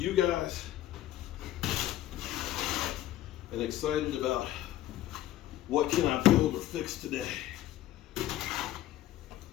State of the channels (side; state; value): right; quieter; 13.6 dB